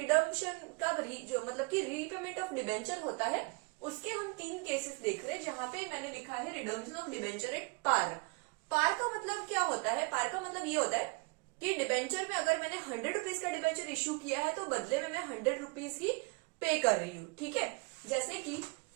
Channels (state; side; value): quieter; left; 30.3 dB